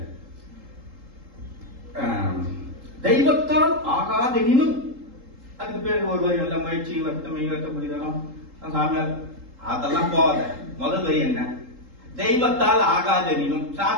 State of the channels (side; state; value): left; late; 3.8 ms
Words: தெய்வத்தால் ஆகாதெனினும், அதுக்கு பேர் ஒரு வரி நல்ல முயற்சி, வருத்தமை, வருத்தக்கூடியதெல்லாம் சாமியார், அதெல்லாம் போகாத. முதல் வரி என்ன? தெய்வத்தால் ஆகாதெனினும்,